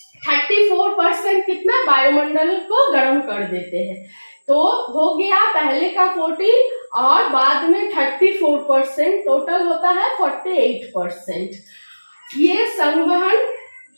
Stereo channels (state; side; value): inverted; both; correlation -1.00